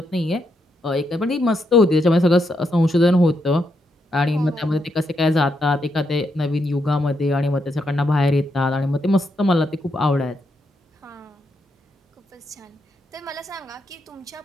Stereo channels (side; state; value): both; normal; correlation 0.80